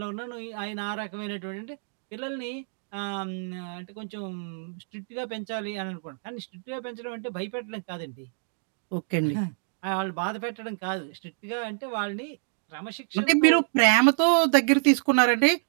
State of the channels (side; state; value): left; silent; digital silence